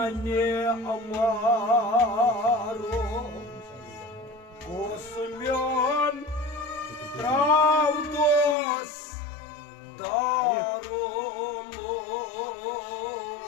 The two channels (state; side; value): drops out; right; at 8.6 s